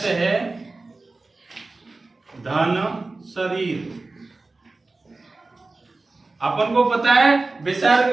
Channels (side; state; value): left; quieter; 3.4 dB